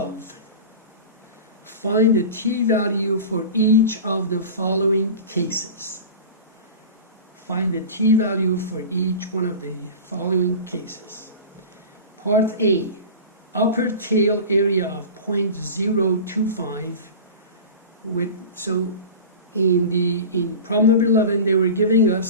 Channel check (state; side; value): inverted; both; correlation -0.33